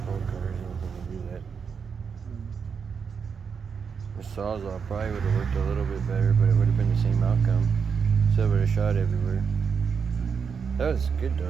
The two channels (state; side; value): quieter; left; 6.2 dB